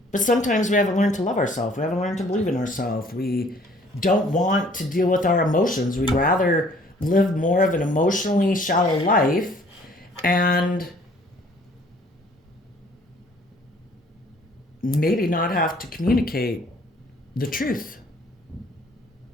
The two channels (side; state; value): both; normal; correlation 0.57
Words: But sometimes we haven't learned to love ourselves. We haven't learned to believe in ourselves. We don't want to deal with our emotions. We'd rather live more of an emotionally shallow life and maybe not have to communicate the truth.